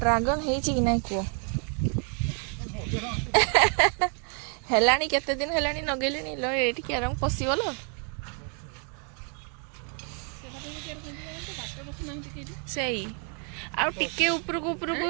है जी कि नहीं कुह हेलानी केते दिन हेलानी नगेलिनी लो एठी के रंग पसिबलो सही आ टिके उपरकू उपरकू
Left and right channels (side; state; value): left; quieter; 39.5 dB